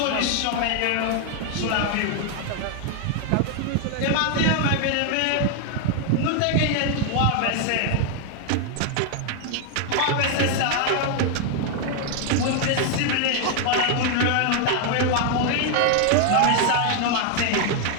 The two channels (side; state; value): both; different; correlation 0.00